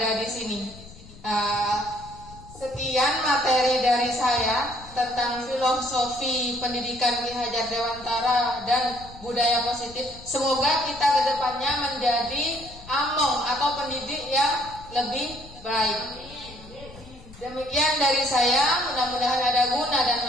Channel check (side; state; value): left; noise; rumble, 19 dB below the sound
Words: di sini. Sekian materi dari saya tentang filosofi pendidikan Ki Hajar Dewantara dan budaya positif. Semoga kita kedepannya menjadi among atau pendidik yang lebih baik. Demikian dari saya, mudah-mudahan ada guna dan